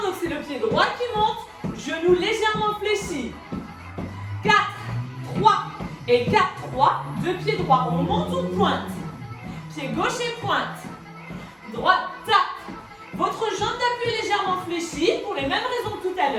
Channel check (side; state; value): both; identical; correlation 1.00